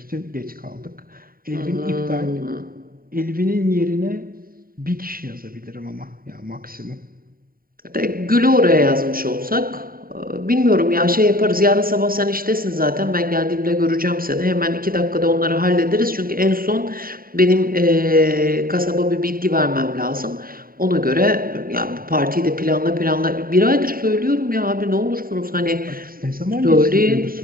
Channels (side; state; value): left; late; 0.42 ms